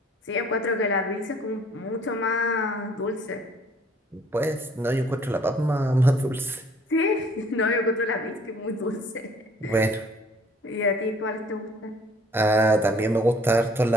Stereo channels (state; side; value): normal; both; correlation 0.57